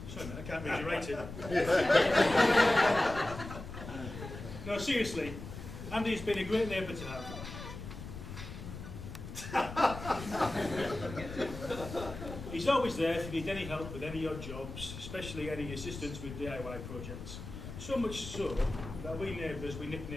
Sorry, man, I can't read your writing. No, seriously, Andy's been a great neighbour to have. He's always there if you need any help with any odd jobs, especially any assistance with DIY projects. So much so that we neighbours, we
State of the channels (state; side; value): noise; left; rumble, 10 dB below the sound